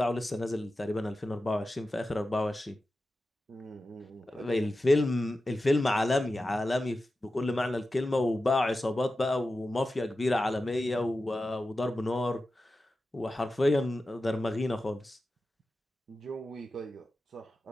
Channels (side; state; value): both; normal; correlation 0.93